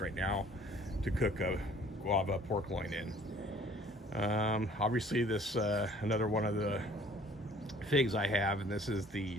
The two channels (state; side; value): normal; both; correlation 0.54